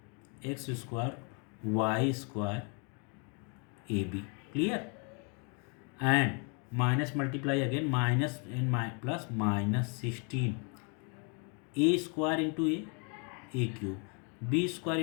x square y square ab. Clear? And minus multiply again, minus and plus minus 16 a square into a cube, b square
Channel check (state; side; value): quieter; right; 36.8 dB